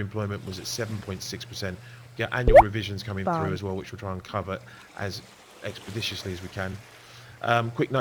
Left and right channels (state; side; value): identical; both; correlation 1.00